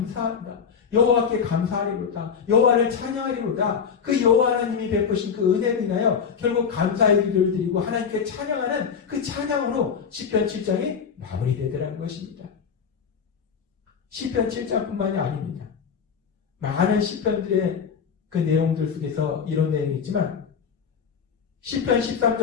여호와께 감사하리로다. 여호와를 찬양하리로다. 그 여호와 하나님이 베푸신 그 은혜를 인하여 결국 감사의 기도를 드리고 하나님께 찬양하는 그 찬양으로 시편 7장이 마무리되더라는 것입니다. 시편 7장뿐만이 아닙니다. 많은 시편들의 그 내용들 속에서 이런 내용이 있지만 시편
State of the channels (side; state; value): right; quieter; 6.6 dB